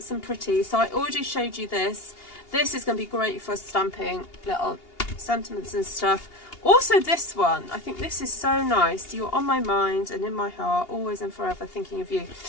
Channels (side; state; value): right; late; 2.8 ms